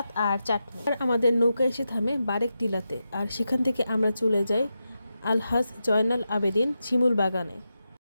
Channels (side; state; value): both; inverted; correlation -0.89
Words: আর চাটনি। আর আমাদের নৌকা এসে থামে বারেক টিলাতে, আর সেখান থেকে আমরা চলে যাই আলহাজ জয়নাল আবেদিন শিমুল বাগানে।